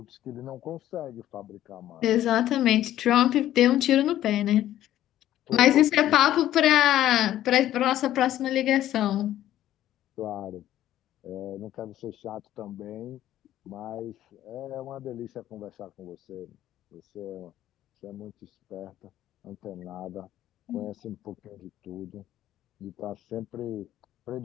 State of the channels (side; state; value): right; quieter; 12.8 dB